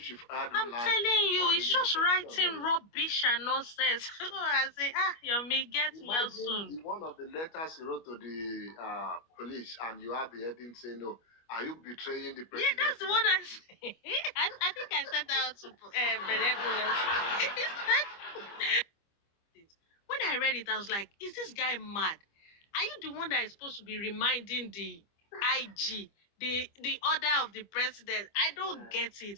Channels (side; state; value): right; late; 25 ms